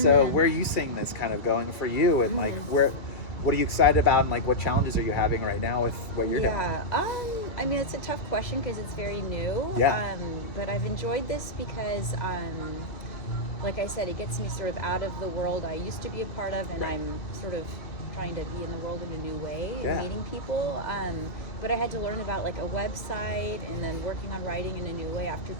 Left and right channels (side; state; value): right; late; 2.3 ms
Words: where are you seeing this kind of going for you, and like what are you excited about, and like what challenges are you having right now with what you're doing? I mean, it's a tough question because it's very new. But I've enjoyed this because like I said, it gets me sort of out of the world I used to be a part of, and I'm sort of trying to be in the world in a new way and meeting people. But I had to learn about like a website and then working on writing in a new way after